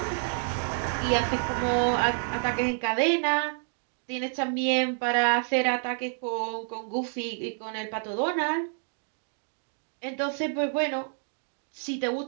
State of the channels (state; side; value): silent; left; 59 dB below the other